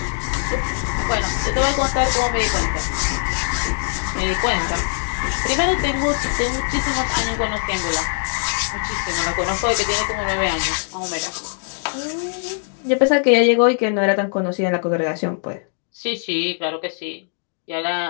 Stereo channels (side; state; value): right; silent; digital silence